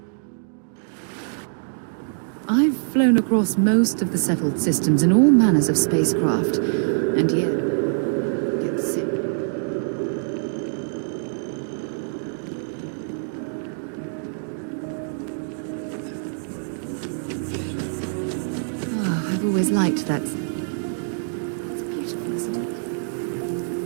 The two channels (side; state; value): left; silent; digital silence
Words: I've flown across most of the settled systems in all manners of spacecraft, and yet I still get sick on the gnat. Oh, I've always liked that statue. It's beautiful, isn't it?